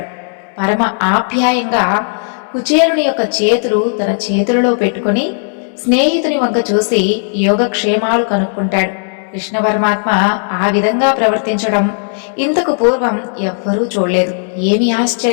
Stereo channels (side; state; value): right; silent; digital silence